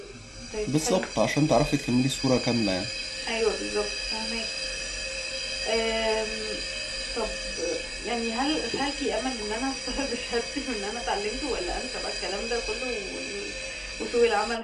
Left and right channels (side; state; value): both; identical; correlation 1.00